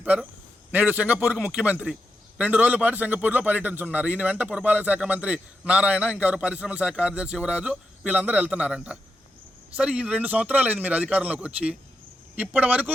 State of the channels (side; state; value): both; normal; correlation 0.86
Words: నేడు సింగపూర్కు ముఖ్యమంత్రి 2 రోజుల పాటు సింగపూర్లో పర్యటించున్నారు. ఈయన వెంట పురపాలక శాఖ మంత్రి నారాయణ, ఇంకెవరు పరిశ్రమల శాఖ కార్యదర్శి యువరాజు, వీళ్ళందరూ వెళ్తున్నారంట. సరే, ఈ 2 సంవత్సరాలు అయింది మీరు అధికారంలోకి వచ్చి. ఇప్పటి